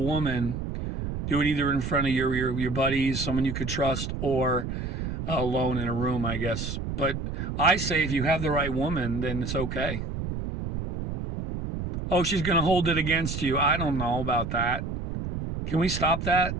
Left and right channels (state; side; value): noise; right; rumble, 5 dB below the sound